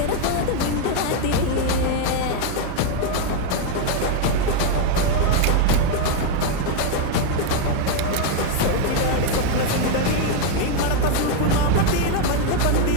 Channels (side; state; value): both; different; correlation 0.01